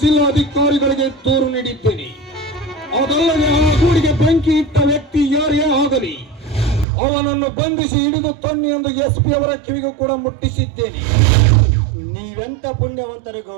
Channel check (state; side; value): drops out; left; at 6.9 s